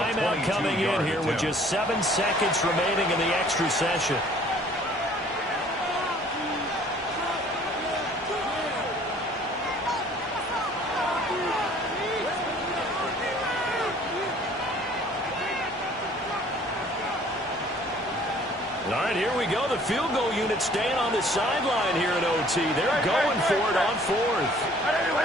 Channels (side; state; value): both; normal; correlation 0.55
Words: coming in here with just 7 seconds remaining in the extra session. All right, here we go. The field goal unit staying on the sideline here in OT. They're going for it on fourth.